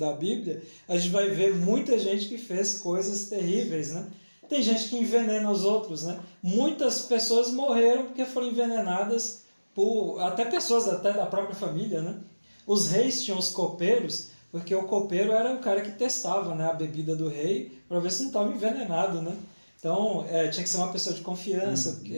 Bíblia, a gente vai ver muita gente que fez coisas terríveis, né? Tem gente que envenena os outros, né? Muitas pessoas morreram porque foram envenenadas por até pessoas até da própria família, né? Os reis tinham os copeiros, porque o copeiro era o cara que testava, né, a bebida do rei para ver se não estava envenenado, né? Então, tinha que ser uma pessoa de confiança,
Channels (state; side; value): inverted; both; correlation -1.00